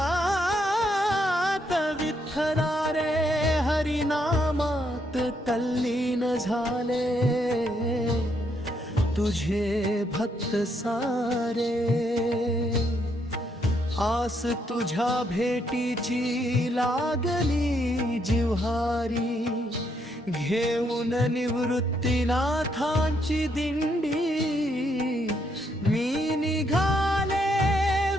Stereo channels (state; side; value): normal; both; correlation 0.75